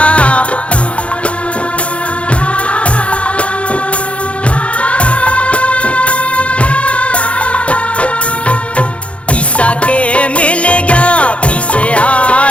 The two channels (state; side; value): late; right; 0.061 ms